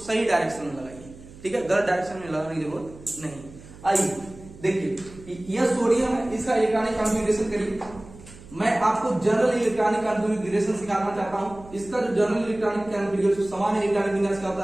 सही डायरेक्शन में लगाइए, ठीक है, गलत डायरेक्शन में लगाने की जरूरत नहीं। आइए देखिए, यह सोडियम है, इसका इलेक्ट्रॉनिक कॉन्फ़िगरेशन करिए। मैं आपको जनरल इलेक्ट्रॉनिक कॉन्फ़िगरेशन सिखाना चाहता हूं। इसका जो जनरल इलेक्ट्रॉनिक कॉन्फ़िगरेशन सामान्य इलेक्ट्रॉनिक विन्यास का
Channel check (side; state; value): right; noise; hum, 19 dB below the sound